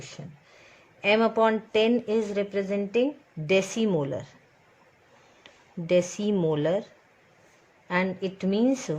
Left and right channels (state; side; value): identical; both; correlation 1.00